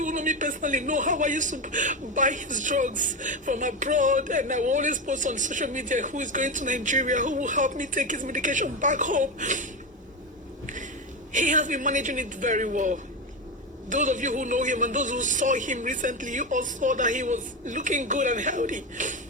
who know me personally know how I used to buy his drugs from abroad, and I will always post on social media who is going to Nigeria, who will help me take his medication back home. He has been managing it very well. Those of you who know him and those who saw him recently, you all saw that he was looking good and healthy.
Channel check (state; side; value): normal; both; correlation 0.15